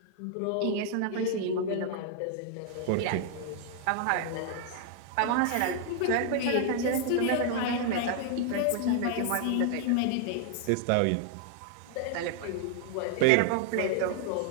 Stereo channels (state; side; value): different; both; correlation 0.00